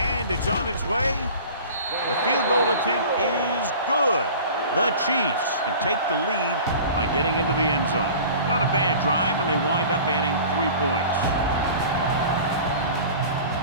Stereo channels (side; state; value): both; inverted; correlation -0.41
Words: it's on its way. The field goal attempt is good. The Chiefs can take the lead by getting into the end zone. Not a bad drive, and they wind up adding 3 points.